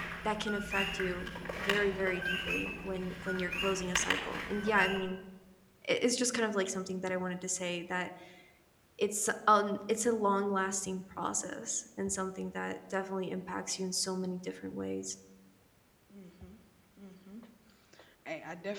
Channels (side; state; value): both; identical; correlation 1.00